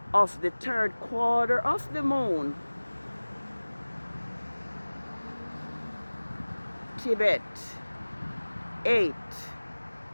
of the 3rd quarter of the moon. TEBETH 8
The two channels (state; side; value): inverted; both; correlation -1.00